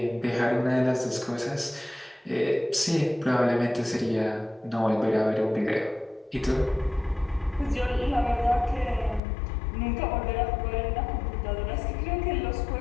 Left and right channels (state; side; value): drops out; right; at 9.2 s